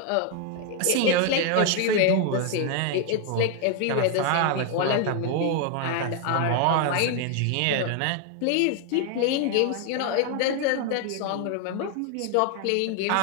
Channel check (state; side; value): different; both; correlation 0.01